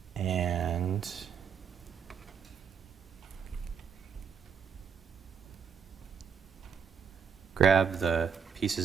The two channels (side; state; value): left; quieter; 6.9 dB